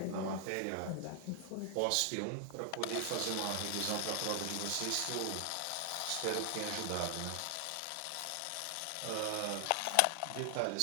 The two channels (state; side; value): different; both; correlation 0.00